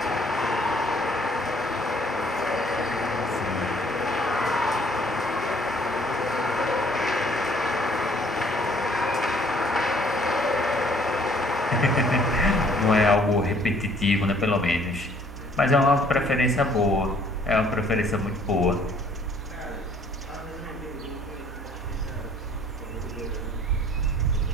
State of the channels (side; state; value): both; normal; correlation 0.60